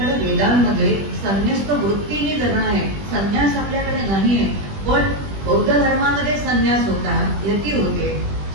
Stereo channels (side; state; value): left; late; 20 ms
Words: वेदांमध्ये संन्यास्त वृत्तीने जगणं आहे, संन्यास आपल्याकडे नाही आहे. पण बौद्ध धर्मामध्ये संन्यास होता, यती होते.